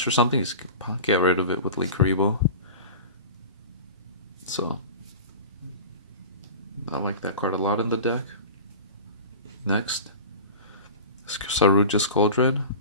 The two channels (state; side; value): inverted; both; correlation -0.34